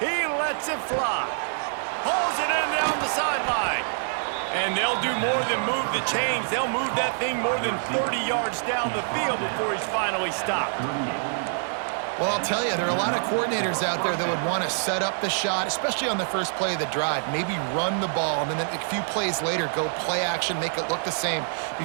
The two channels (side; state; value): left; silent; 55 dB below the other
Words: lets it fly. Pulls it in down the sideline. And they'll do more than move the chains. They'll move that thing more than 30 yards down the field before he's finally stopped. Well, I'll tell you, there are a lot of coordinators out there that would want to set up the shot, especially on the first play of the drive, maybe run the ball, and then a few plays later go play action, make it look the same